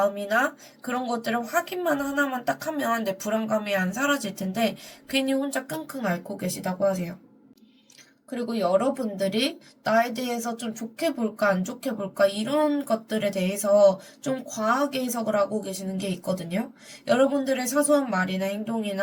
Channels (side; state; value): both; identical; correlation 1.00